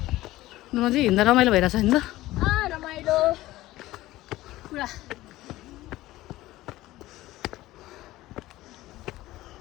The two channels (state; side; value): quieter; right; 16.8 dB